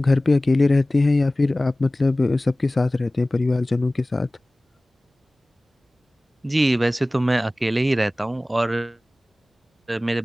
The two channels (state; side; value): normal; both; correlation 0.98